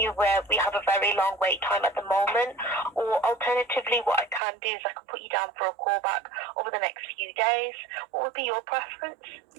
you aware we have a very long wait time at the moment. Or alternatively, what I can do is I can put you down for a call back over the next few days. What would be your preference?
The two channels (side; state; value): left; drops out; at 4.4 s